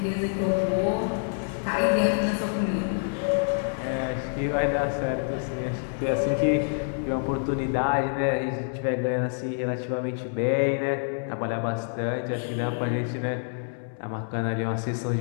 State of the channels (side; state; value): right; silent; 60 dB below the other